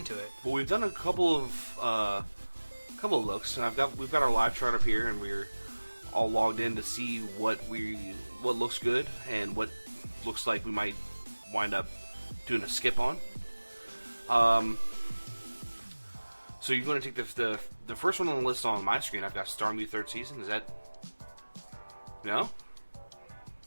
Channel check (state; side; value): inverted; both; correlation -1.00